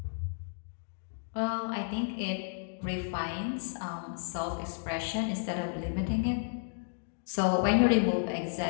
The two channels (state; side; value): silent; right; digital silence